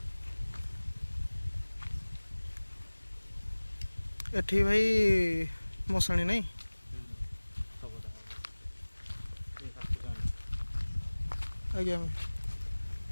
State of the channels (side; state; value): both; inverted; correlation -1.00